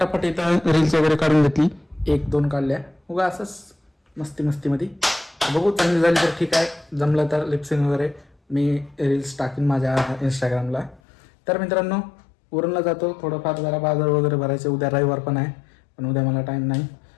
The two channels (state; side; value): drops out; right; at 11.0 s